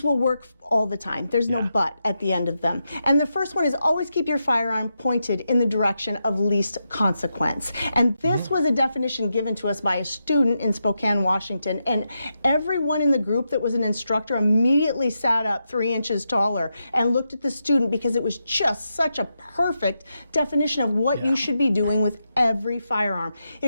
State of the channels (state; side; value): inverted; both; correlation -0.86